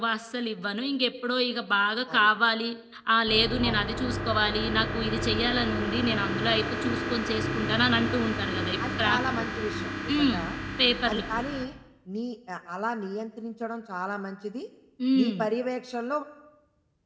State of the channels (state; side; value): identical; both; correlation 1.00